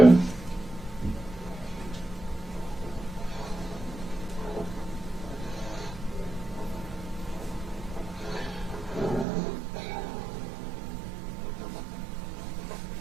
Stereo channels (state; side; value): drops out; left; at 9.2 s